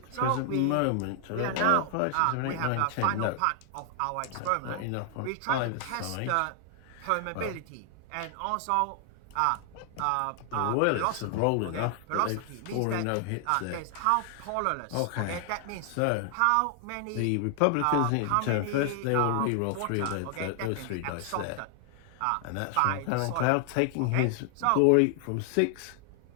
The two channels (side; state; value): both; different; correlation 0.00